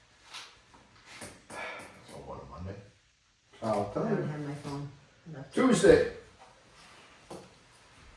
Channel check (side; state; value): both; identical; correlation 1.00